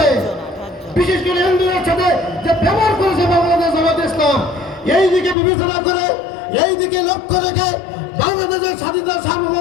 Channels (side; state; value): right; drops out; at 5.4 s